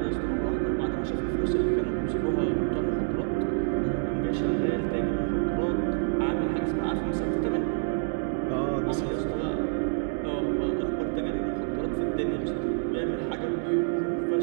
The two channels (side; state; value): left; silent; digital silence